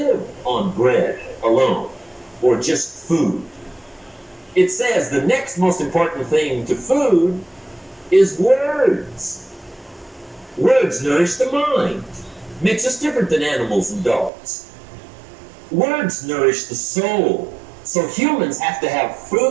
on bread alone or just food. It says the next most important thing to food is words. Words nourish the mind, makes us different than animals and dogs. Words nourish the soul. So humans have to have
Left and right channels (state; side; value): drops out; left; at 14.3 s